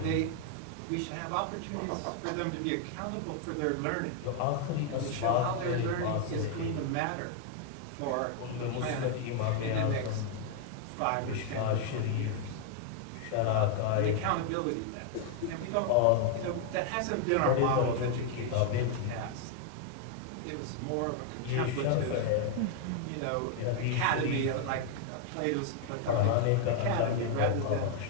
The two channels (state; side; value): different; both; correlation 0.00